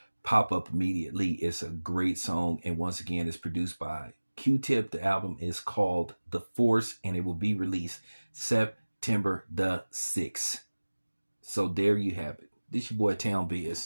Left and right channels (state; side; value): inverted; both; correlation -1.00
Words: pop up immediately. It's a great song, and once again, it's produced by Q-Tip. The album is called The Force, and it will be released September the 6th. So there you have it. This your boy Town